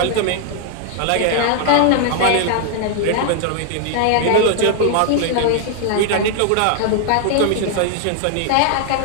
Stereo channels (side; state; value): both; different; correlation 0.00